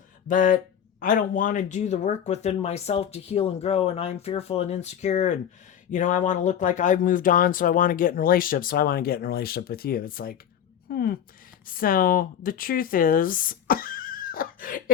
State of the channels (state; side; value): quieter; right; 9.2 dB